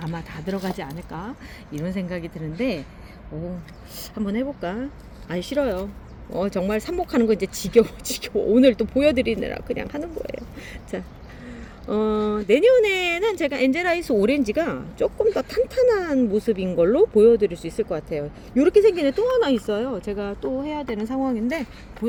다 들어가지 않을까 이런 생각이 드는데 한번 해볼까? 아니 싫어요. 정말 삽목하는 거 이제 지겨워. 오늘 또 보여드리느라 그냥 하는 거예요. 자, 내년에는 제가 엔젤아이스 오렌지가 조금 더 탄탄한 모습인 걸로 보여드릴 수 있을 것 같아요. 이렇게 생긴 애 또 하나 있어요. 제가 또 해야 되는 상황인데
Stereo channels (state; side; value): identical; both; correlation 1.00